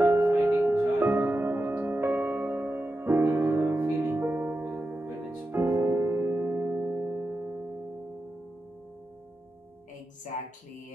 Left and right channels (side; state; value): both; normal; correlation 0.90